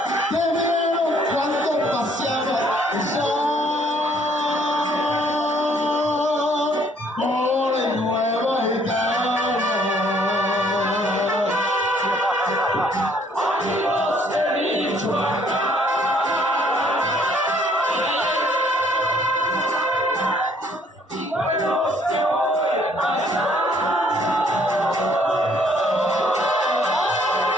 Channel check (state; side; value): normal; both; correlation 0.63